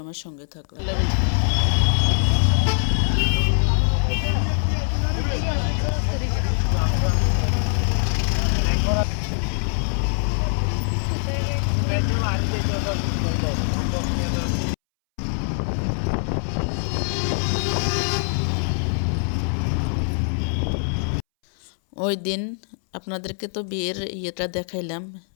আমার সঙ্গে থাকুন। ওই দিন আপনাদেরকে তো বিয়ের ইয়েটা দেখাইলাম।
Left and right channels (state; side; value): silent; right; 63 dB below the other